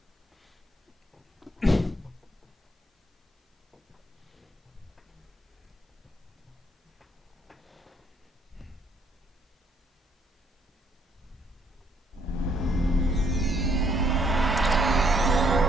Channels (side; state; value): both; normal; correlation 0.69